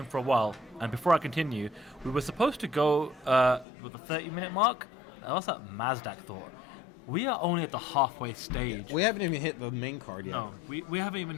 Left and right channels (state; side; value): drops out; right; at 3.7 s